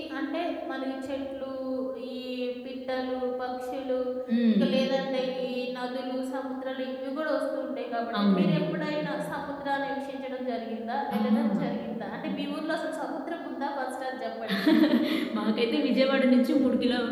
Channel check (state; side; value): identical; both; correlation 1.00